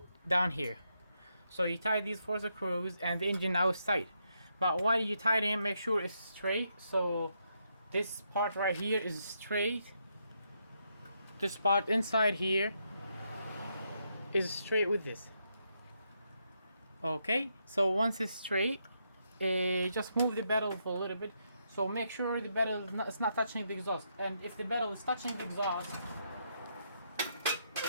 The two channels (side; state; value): both; inverted; correlation -0.79